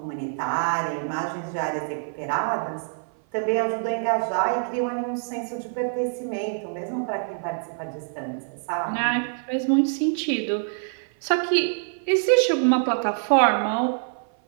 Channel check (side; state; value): left; silent; 56 dB below the other